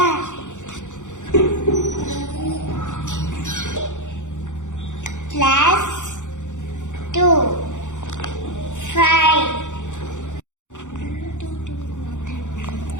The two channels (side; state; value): right; late; 0.85 ms